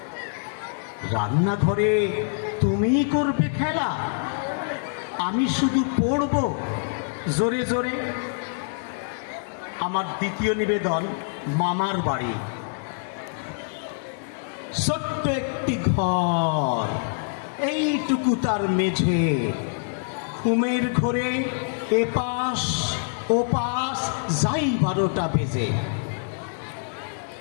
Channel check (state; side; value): silent; right; 62 dB below the other